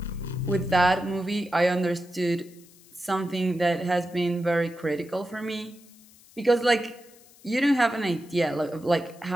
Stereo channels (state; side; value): noise; left; hiss, 25 dB below the sound